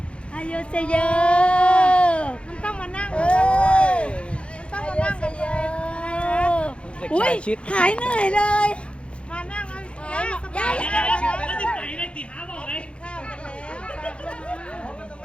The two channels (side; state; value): right; late; 0.058 ms